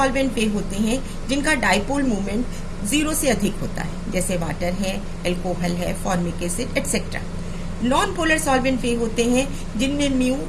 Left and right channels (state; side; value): identical; both; correlation 1.00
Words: वे होते हैं जिनका डाइपोल मूवमेंट 0 से अधिक होता है, जैसे वाटर है, अल्कोहल है, formic acid etcetera. Non polar solvent वे होते हैं जिनमें म्यू